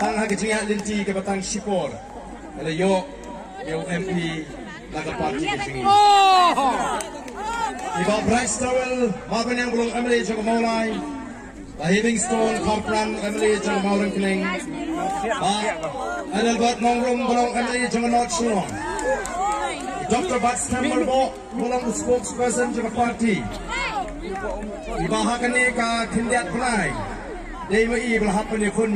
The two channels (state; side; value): identical; both; correlation 1.00